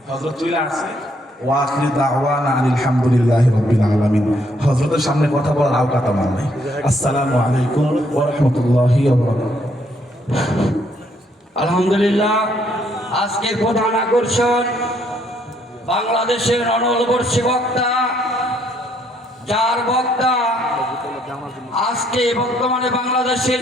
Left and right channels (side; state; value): both; normal; correlation 0.70